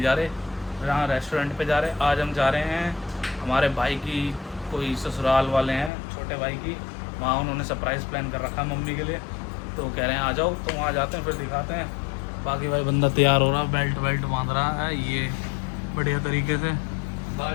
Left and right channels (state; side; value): drops out; right; at 5.9 s